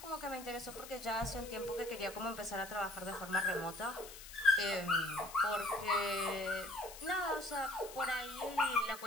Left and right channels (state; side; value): noise; left; hiss, 14 dB below the sound